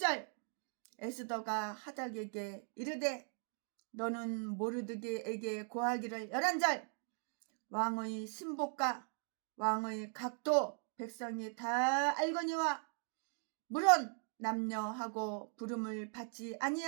에스더가 하닥에게 이르되 너는 모르드게에게 고하기를 11절. 왕의 신복과 왕의 각도 백성이 다 알거니와 물론 남녀하고 부름을 받지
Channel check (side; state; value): left; silent; 52 dB below the other